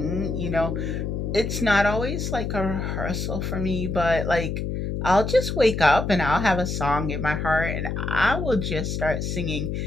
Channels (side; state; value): left; noise; hum, 3 dB below the sound